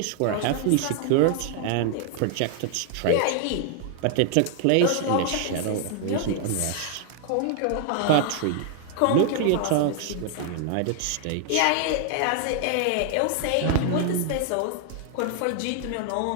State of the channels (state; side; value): different; both; correlation 0.00